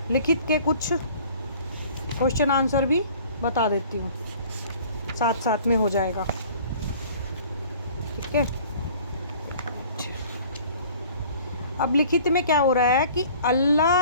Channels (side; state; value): both; inverted; correlation -0.50